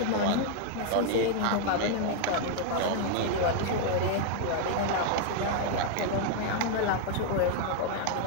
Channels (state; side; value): different; both; correlation 0.00